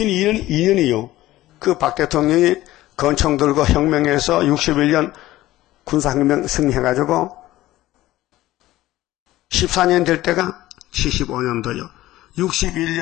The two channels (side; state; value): right; quieter; 16.2 dB